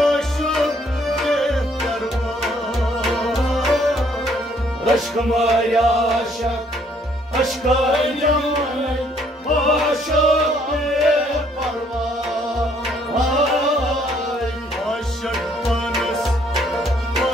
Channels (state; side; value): normal; both; correlation 0.65